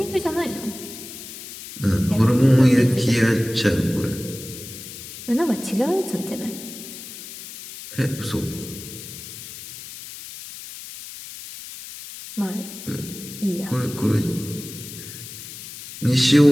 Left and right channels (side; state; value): left; noise; hiss, 13 dB below the sound